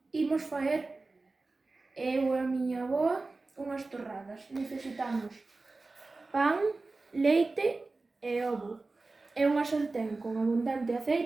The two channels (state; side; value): quieter; left; 3.5 dB